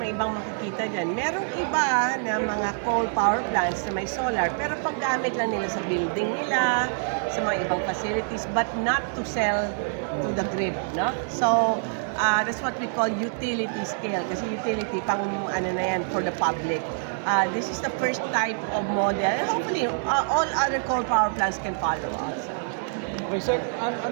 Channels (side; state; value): left; silent; digital silence